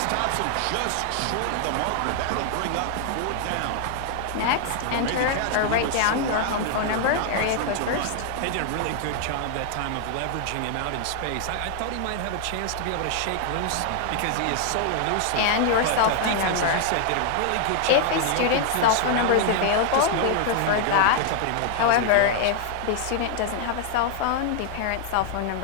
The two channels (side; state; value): both; different; correlation 0.00